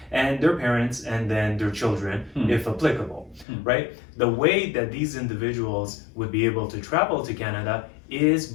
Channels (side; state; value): right; drops out; at 3.5 s